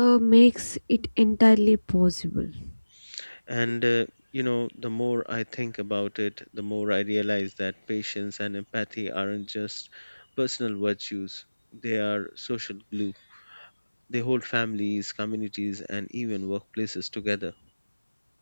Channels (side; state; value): both; inverted; correlation -1.00